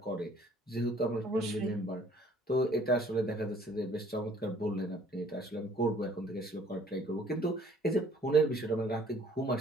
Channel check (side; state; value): both; normal; correlation 0.57